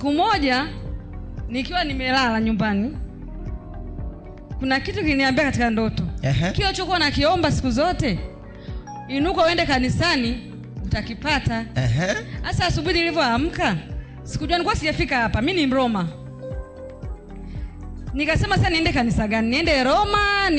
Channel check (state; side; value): identical; both; correlation 1.00